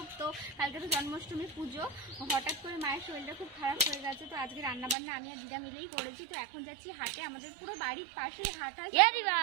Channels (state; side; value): drops out; left; at 5.0 s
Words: তো কালকে তো জন্মাষ্টমী পুজো, হঠাৎ করে মায়ের শরীরটা খুব খারাপ হয়ে গেছে, তো আজকে রান্নাবান্না আমি আর দিদা মিলেই করেছি। তো এখন যাচ্ছি হাটে, আমাদের পুরো বাড়ির পাশেই হাট হয়।